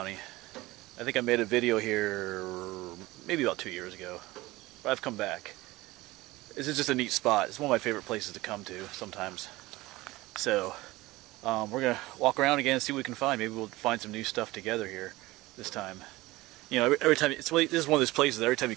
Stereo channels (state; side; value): quieter; left; 19.6 dB